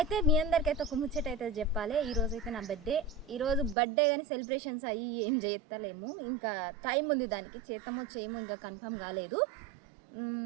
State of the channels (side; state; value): left; drops out; at 3.8 s